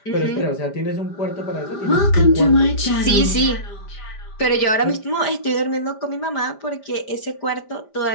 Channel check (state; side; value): late; right; 5.0 ms